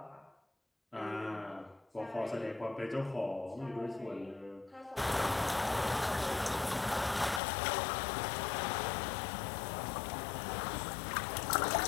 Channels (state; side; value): drops out; right; at 7.4 s